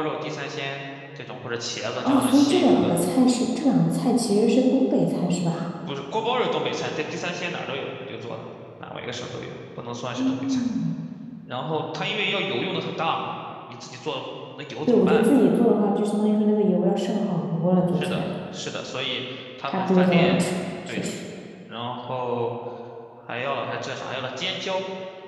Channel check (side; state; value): both; identical; correlation 1.00